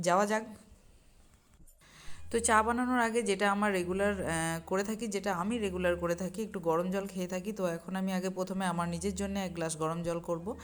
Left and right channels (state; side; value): identical; both; correlation 1.00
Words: যাক। তো চা বানানোর আগে যেটা আমার রেগুলার করে থাকি, যেটা আমি রেগুলার করে থাকি, একটু গরম জল খেয়ে থাকি। তো এখন আমি আগে প্রথমে আমার নিজের জন্য এক গ্লাস গরম জল করব।